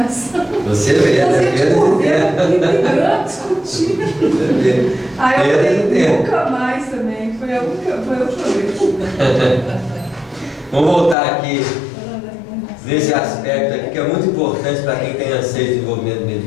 Você vê, brigando, discutindo. Aí eu falei, nunca mais também. Foi a última vez. Vamos voltar aqui nesse aspecto aqui, que é muito importante para quem tem anseio de desenvolvimento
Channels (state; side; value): drops out; right; at 11.2 s